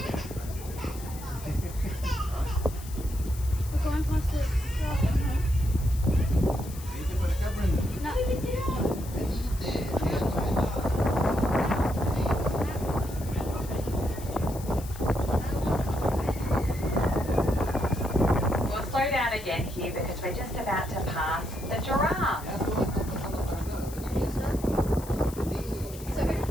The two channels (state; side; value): noise; left; hiss, 16 dB below the sound